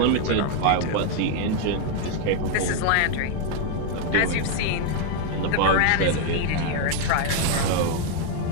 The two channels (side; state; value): both; different; correlation 0.01